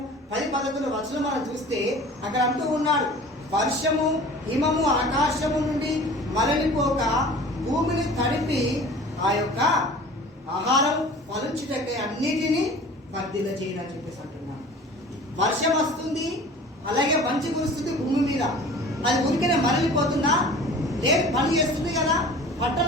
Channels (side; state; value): both; normal; correlation 0.43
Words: 10-11 వచనం మనం చూస్తే అక్కడ అంటూ ఉన్నాడు, వర్షము హిమము ఆకాశము నుండి మరలిపోక భూమిని తడిపి ఆ యొక్క ఆహారం ఫలించుటకై అన్నిటినీ వర్ధిల్ల చేయని చెప్పేసి అంటున్నాను. వర్షం వస్తుంది, అలాగే మంచు కురుస్తుంది భూమి మీద, అది ఉరికనే మరలిపోతుందా? లేదు, పని చేస్తుంది కదా,